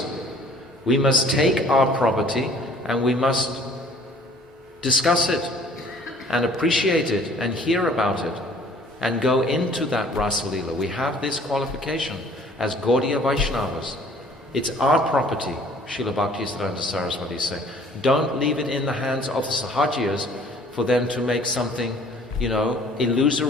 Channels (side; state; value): both; normal; correlation 0.54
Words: We must take our property and we must discuss it and appreciate it and hear about it and go into that Rasa Leela. We have this qualification as Gaudiya Vaishnavas. It's our property, Srila Bhaktisiddhanta Saraswati say. Don't leave it in the hands of the Sahajiyas for them to make something,